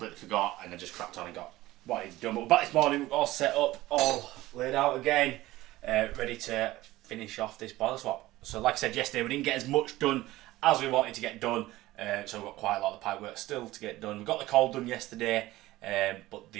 forgot and I just cracked on and got what I need to do. But we're back this morning, we're all set up, all laid out again, ready to finish off this boiler swap. So like I said yesterday, we didn't get as much done as we wanted to get done, so we've got quite a lot of the pipe work still to get done. We got the cold done yesterday, but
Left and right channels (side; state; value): left; quieter; 17.3 dB